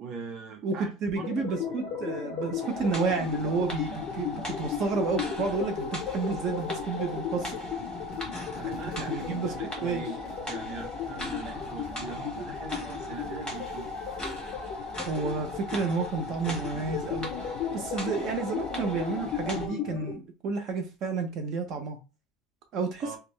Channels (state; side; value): normal; both; correlation 0.37